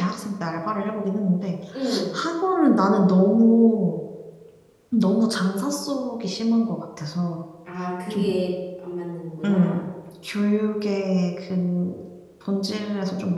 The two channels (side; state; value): both; identical; correlation 1.00